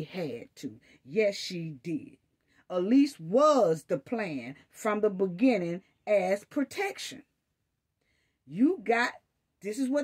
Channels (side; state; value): both; identical; correlation 1.00